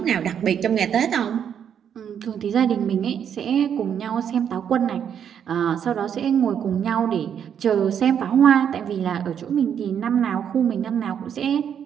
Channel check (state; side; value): quieter; left; 8.4 dB